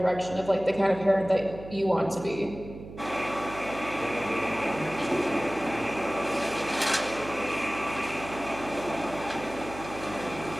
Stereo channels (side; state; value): right; noise; hum, 13 dB below the sound